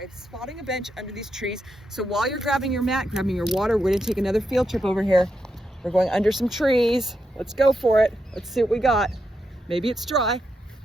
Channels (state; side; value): normal; both; correlation 0.84